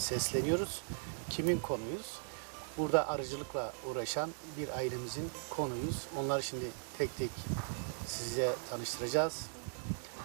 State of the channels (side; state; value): left; silent; 52 dB below the other